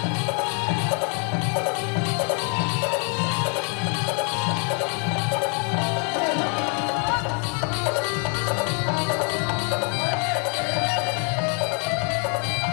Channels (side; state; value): right; quieter; 38.9 dB